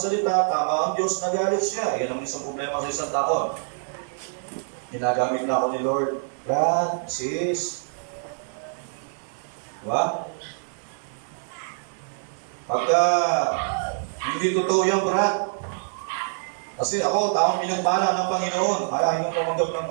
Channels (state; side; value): silent; left; digital silence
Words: tama ang Diyos, nagalit siya. Yan ang isang problema sa isang tao. Ginagamit na ako ni Lord. Brad, sis, diba? Pagka hindi totoo yan, Brad. Kasi ako, taong pinagpala ng Panginoon, ayaw nang tumanggap ng